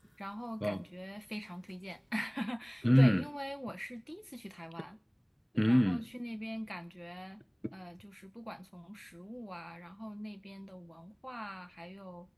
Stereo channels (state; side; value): identical; both; correlation 1.00